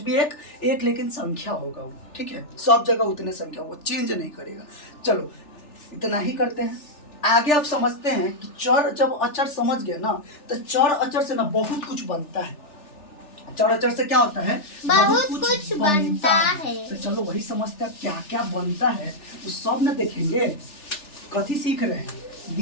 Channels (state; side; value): late; right; 3.4 ms